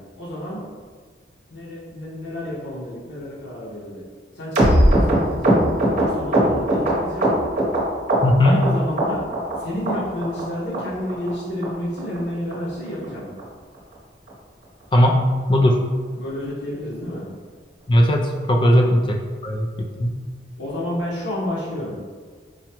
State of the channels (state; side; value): normal; both; correlation 0.71